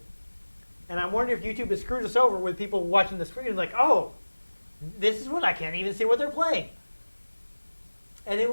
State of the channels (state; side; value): inverted; both; correlation -1.00